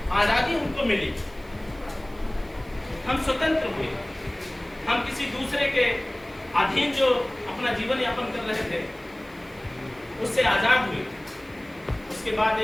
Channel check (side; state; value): right; noise; hiss, 27 dB below the sound